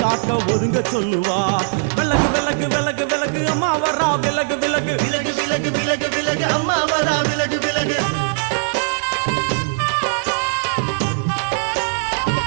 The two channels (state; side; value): silent; left; digital silence